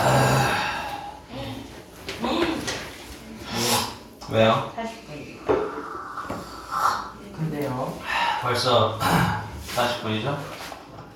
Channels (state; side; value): identical; both; correlation 1.00